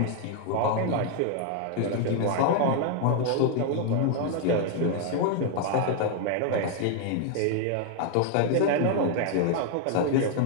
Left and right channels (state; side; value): different; both; correlation 0.00